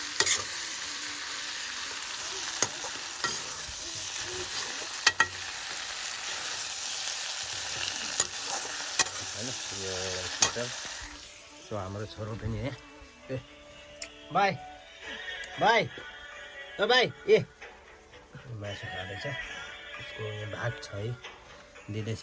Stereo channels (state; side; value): identical; both; correlation 1.00